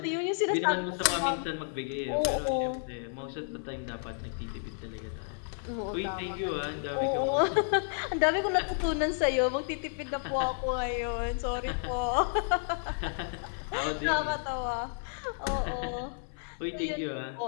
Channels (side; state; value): right; silent; 56 dB below the other